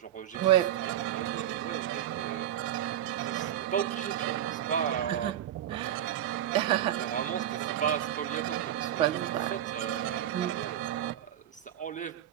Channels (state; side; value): quieter; left; 11.4 dB